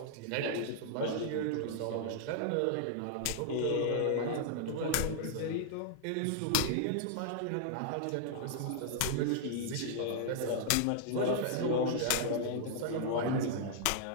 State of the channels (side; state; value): both; different; correlation -0.01